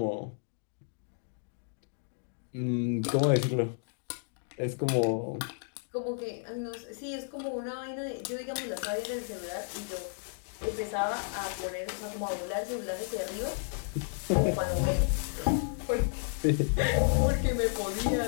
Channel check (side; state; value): right; silent; digital silence